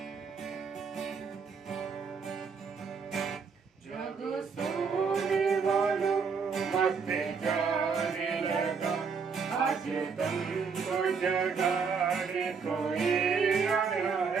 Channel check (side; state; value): left; quieter; 5.6 dB